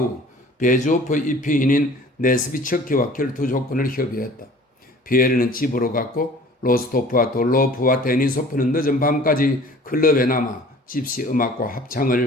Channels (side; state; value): both; normal; correlation 0.48